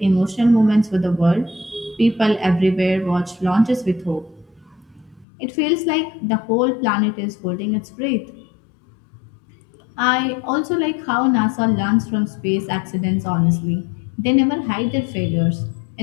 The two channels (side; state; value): right; drops out; at 5.2 s